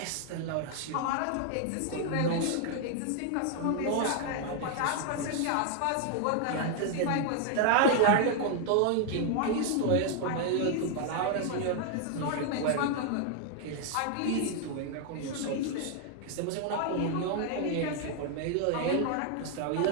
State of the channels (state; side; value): different; both; correlation 0.00